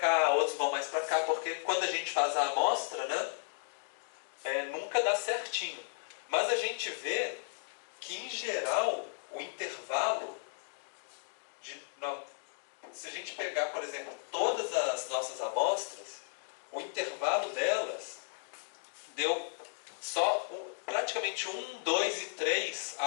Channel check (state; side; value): silent; right; digital silence